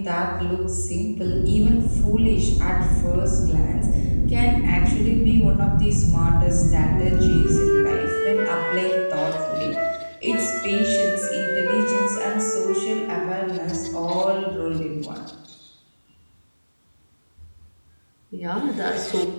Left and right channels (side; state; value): both; inverted; correlation -1.00